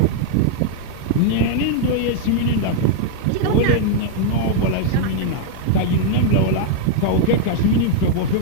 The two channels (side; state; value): both; different; correlation 0.00